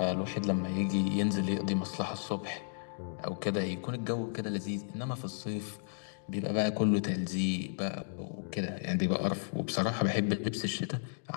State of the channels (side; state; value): right; silent; digital silence